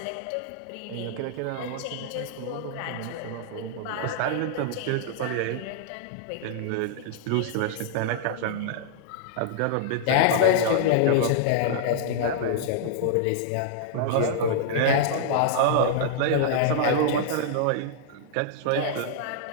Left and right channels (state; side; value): different; both; correlation -0.01